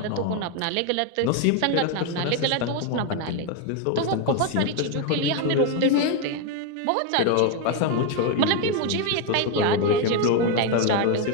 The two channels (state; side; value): different; both; correlation 0.01